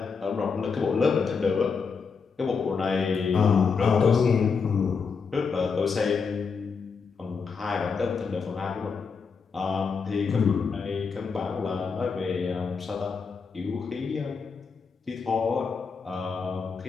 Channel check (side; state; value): right; quieter; 5.4 dB